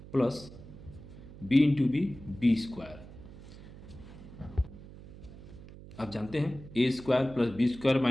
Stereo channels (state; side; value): noise; right; hum, 16 dB below the sound